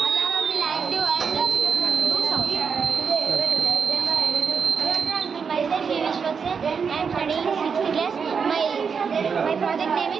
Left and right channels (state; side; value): quieter; left; 6.1 dB